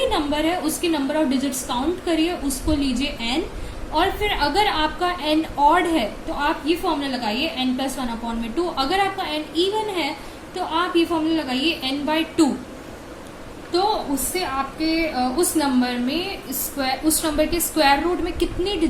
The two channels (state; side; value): identical; both; correlation 1.00